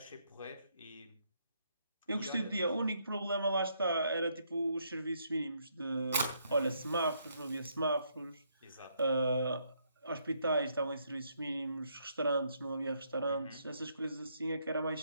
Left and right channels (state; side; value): inverted; both; correlation -0.74